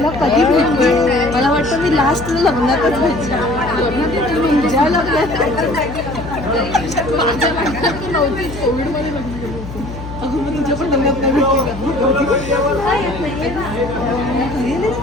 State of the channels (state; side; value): noise; left; hum, 11 dB below the sound